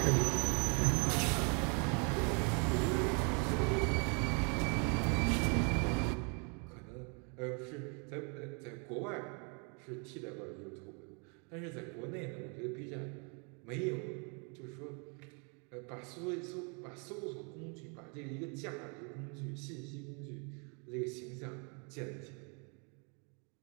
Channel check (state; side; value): quieter; left; 35.9 dB